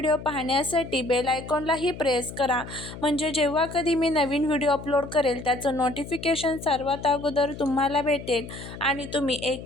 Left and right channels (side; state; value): left; noise; hum, 12 dB below the sound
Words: पाहण्यासाठी बेल आयकॉनलाही प्रेस करा, म्हणजे जेव्हा कधी मी नवीन व्हिडिओ अपलोड करेल त्याचं नोटिफिकेशन सर्वात अगोदर तुम्हाला भेटेल आणि तुम्ही एक